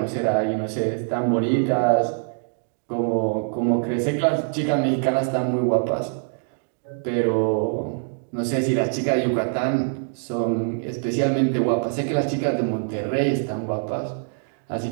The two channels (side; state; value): left; silent; digital silence